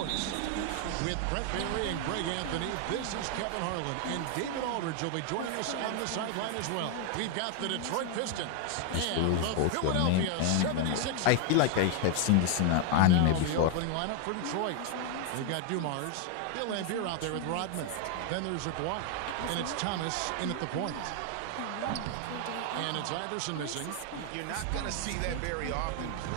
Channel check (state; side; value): different; both; correlation 0.00